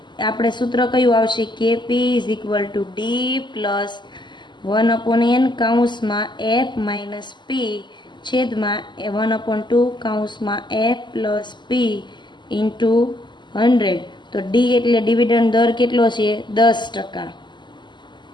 આપણે સૂત્ર કયું આવશે કે પી is equal to D plus 1/n કૌંસમાં એફ માઇનસ પી છેદમાં 1/2 કૌંસમાં એફ પ્લસ પી ઇન્ટુ 100. તો ડી એટલે ડિવિડન્ડ દર કેટલો છે 10%.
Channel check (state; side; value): late; right; 0.22 ms